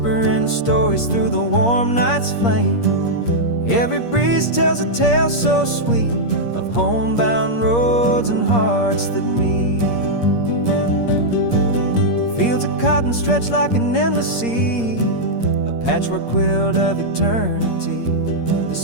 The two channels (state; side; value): late; right; 8.5 ms